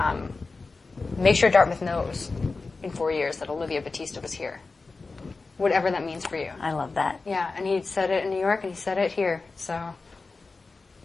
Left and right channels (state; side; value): quieter; right; 3.9 dB